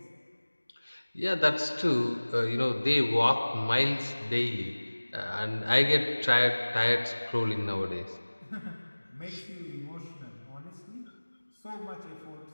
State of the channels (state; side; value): inverted; both; correlation -1.00